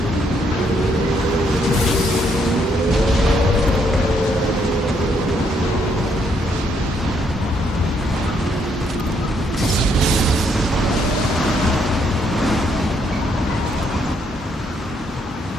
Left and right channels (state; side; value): normal; both; correlation 0.72